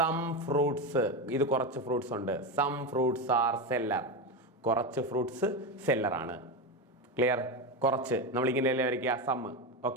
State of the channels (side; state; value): both; normal; correlation 0.15